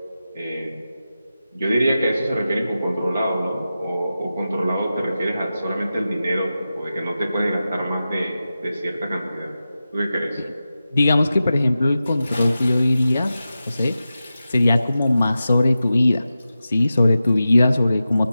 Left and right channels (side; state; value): both; inverted; correlation -0.93